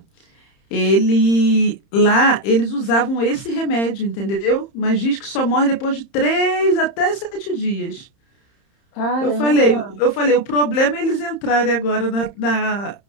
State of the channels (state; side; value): late; right; 30 ms